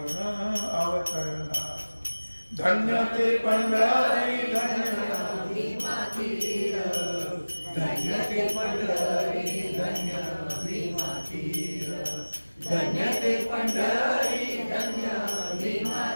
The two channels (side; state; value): both; inverted; correlation -1.00